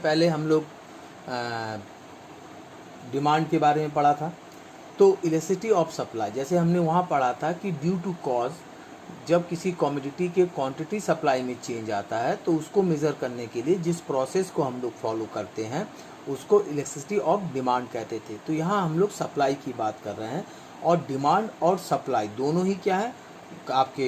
हम लोग डिमांड के बारे में पढ़ा था। तो इलेक्ट्रिसिटी ऑफ सप्लाई जैसे हमने वहाँ पढ़ा था कि ड्यू टू कॉज जब किसी कमोडिटी के क्वांटिटी सप्लाई में चेंज आता है तो उसको मेज़र करने के लिए जिस प्रोसेस को हम लोग फॉलो करते हैं उसको इलेक्ट्रिसिटी ऑफ डिमांड कहते थे। तो यहाँ हम लोग सप्लाई की बात कर रहे हैं और डिमांड और सप्लाई दोनों ही क्या है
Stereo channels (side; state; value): both; identical; correlation 1.00